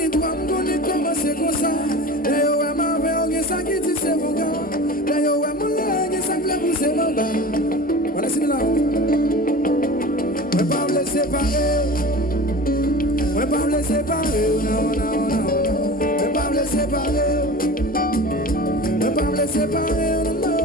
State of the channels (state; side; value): normal; both; correlation 0.35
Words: toi, on est commencé comme ça. D'ailleurs, ouais, ma mère, on est ça qui dit c'est mon gars. D'ailleurs, ouais, mon leg, ça plaît pour c'est mon gars. Voilà, c'est là. On va pas me laisser séparer. On va pas me laisser séparer. Non, non, non. On va pas me laisser séparer. On va pas me laisser séparer.